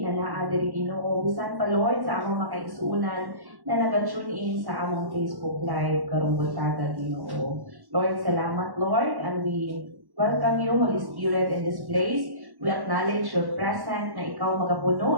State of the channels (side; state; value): left; late; 1.1 ms